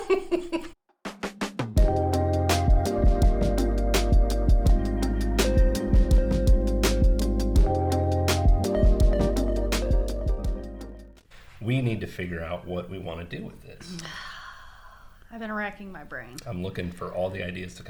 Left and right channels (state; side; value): identical; both; correlation 1.00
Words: We need to figure out what we want to do with this. I've been racking my brain. I'm looking for all the ideas to